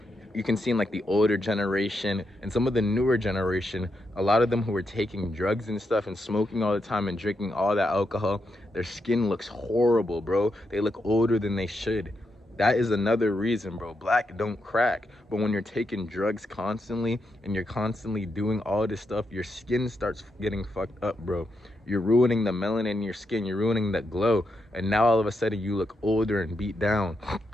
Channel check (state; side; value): normal; both; correlation 0.83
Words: you can see in like the older generation and some of the newer generation, a lot of them who are taking drugs and stuff and smoking all the time and drinking all that alcohol, their skin looks horrible, bro. They look older than they should. That is another reason, bro. Black don't crack. But when you're taking drugs constantly and you're constantly doing all this stuff, your skin starts getting fucked up, bro. You're ruining the melanin in your skin. You're ruining that glow. And now all of a sudden you look older and beat down.